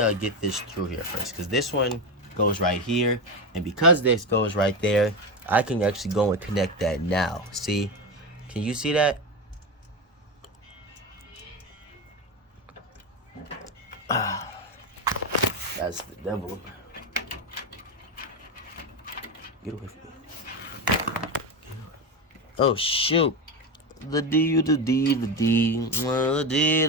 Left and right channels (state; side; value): normal; both; correlation 0.16